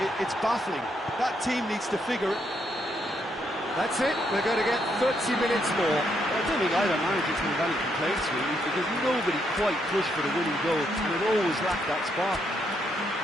it's baffling. That team needs to figure it. That's it, we're going to get 30 minutes more. I don't think either manager can have any complaints really, because nobody quite pushed for the winning goal, and it always lacked that spark.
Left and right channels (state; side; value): normal; both; correlation 0.76